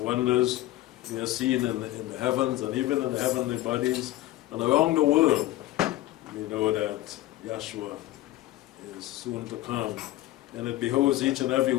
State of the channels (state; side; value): quieter; right; 15.8 dB